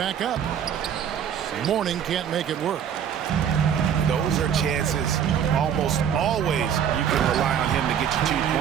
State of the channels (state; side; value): quieter; left; 8.6 dB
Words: up. Mourning can't make it work. Those are chances almost always you can rely on him to get you 2